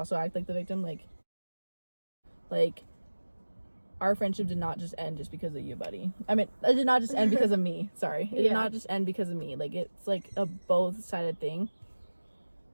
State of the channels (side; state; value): both; inverted; correlation -1.00